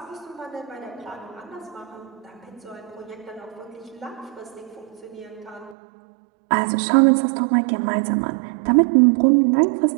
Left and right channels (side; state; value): left; drops out; at 5.8 s